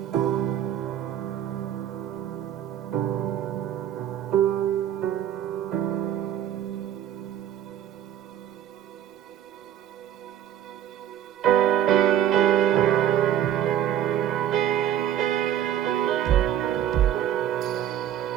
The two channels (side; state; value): left; quieter; 10.9 dB